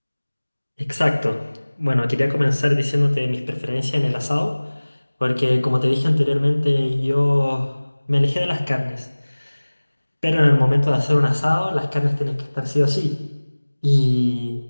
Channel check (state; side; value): inverted; both; correlation -1.00